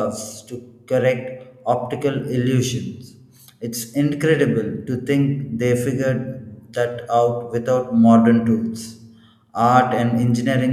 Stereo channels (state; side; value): identical; both; correlation 1.00